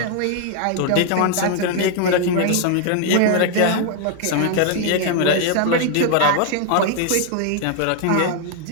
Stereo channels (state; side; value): different; both; correlation 0.00